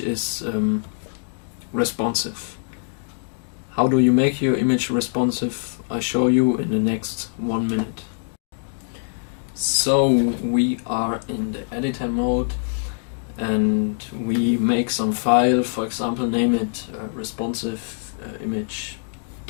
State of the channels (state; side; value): silent; right; digital silence